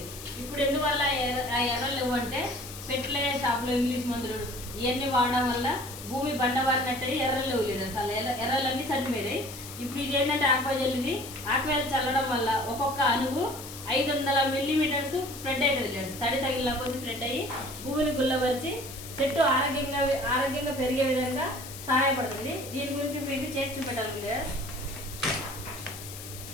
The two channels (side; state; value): left; noise; hiss, 13 dB below the sound